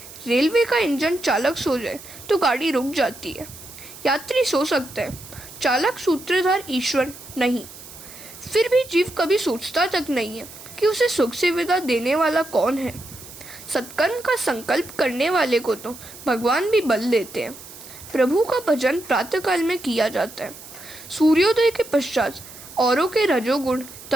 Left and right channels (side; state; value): right; noise; hiss, 16 dB below the sound